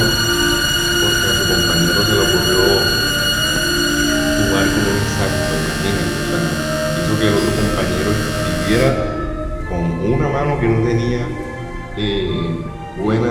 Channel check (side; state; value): both; identical; correlation 1.00